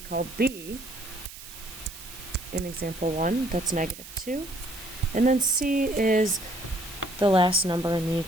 call b, in example 1, that's -2. And then c is the last number in the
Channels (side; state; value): right; noise; hiss, 15 dB below the sound